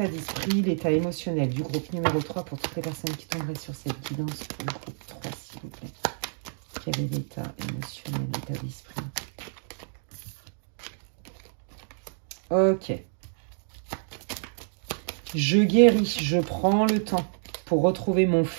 d'esprit, l'état émotionnel du groupe numéro 3 pour toutes les personnes qui tomberaient sur cette guidance pour le groupe 3, s'il vous plaît. Quel est l'état émotionnel, l'état d'esprit? Ok. Je guéris, je prends le temps pour retrouver mon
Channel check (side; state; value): left; silent; digital silence